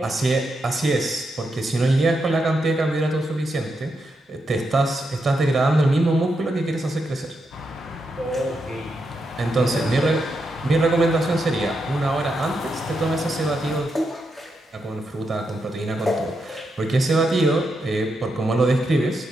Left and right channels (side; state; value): both; normal; correlation 0.83